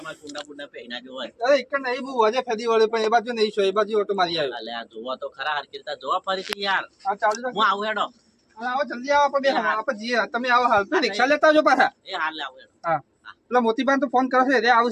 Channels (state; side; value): identical; both; correlation 1.00